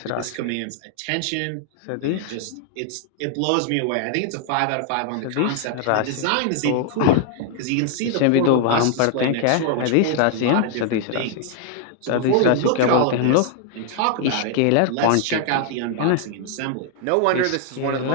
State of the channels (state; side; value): different; both; correlation 0.00